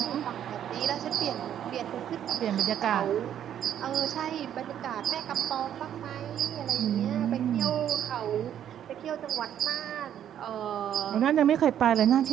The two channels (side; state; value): left; quieter; 10.1 dB